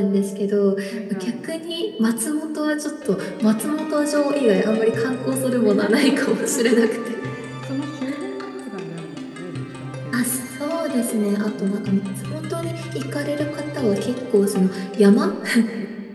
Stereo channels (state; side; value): identical; both; correlation 1.00